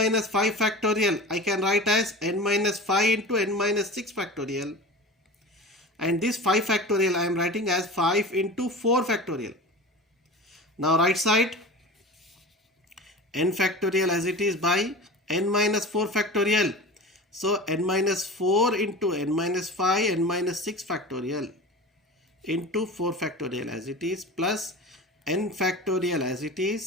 5 factorial I can write as n minus 5 into n minus 6 factorial, and this 5 factorial I am writing as 5 into 4 factorial. Now right side n factorial as it is by n minus 4 factorial. So n minus 4 into n minus 5, n minus 6 factorial into 4 factorial as it is plus n factorial as it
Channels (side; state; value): both; normal; correlation 0.33